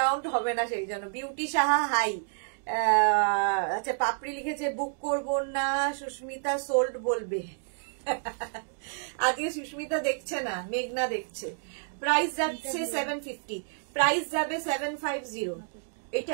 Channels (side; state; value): left; silent; digital silence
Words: হবে না, সেই জন্য। Beauty Saha hi. আচ্ছা পাপড়ি লিখেছে বুক করবো না, সুস্মিতা সোল্ড বলবে। আজকে সুস্মিতা দেখছে না, মেঘনা দেখছে। প্রাইস যাচ্ছে 750, প্রাইস যাবে 750।